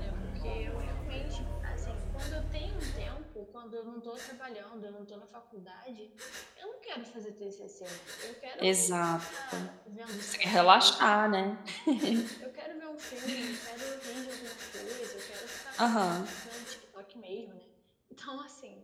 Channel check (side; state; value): both; identical; correlation 1.00